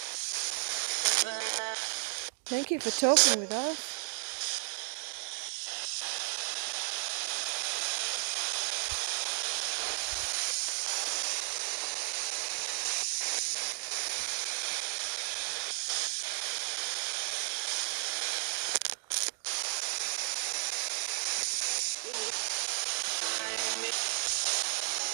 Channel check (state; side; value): silent; left; digital silence